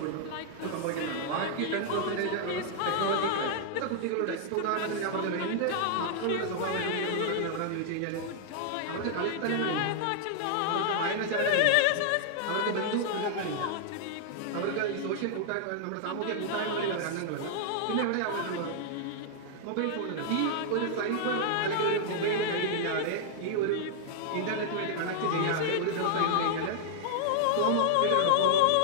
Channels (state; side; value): different; both; correlation -0.01